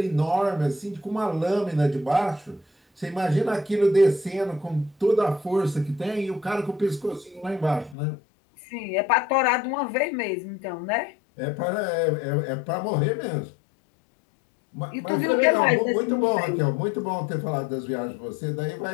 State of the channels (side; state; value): right; drops out; at 8.0 s